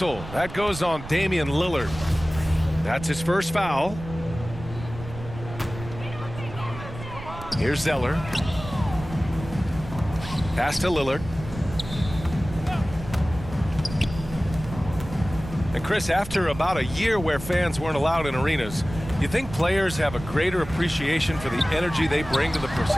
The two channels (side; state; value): right; noise; rumble, 12 dB below the sound